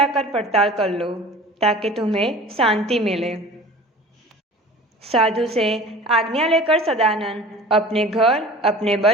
पड़ताल कर लो, ताकि तुम्हें शांति मिले। साधु से आज्ञा लेकर सदानंद अपने घर, अपने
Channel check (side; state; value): both; normal; correlation 0.42